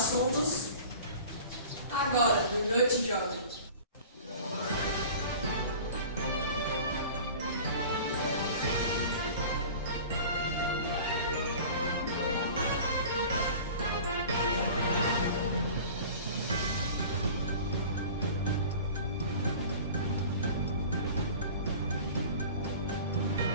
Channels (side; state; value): both; inverted; correlation -0.41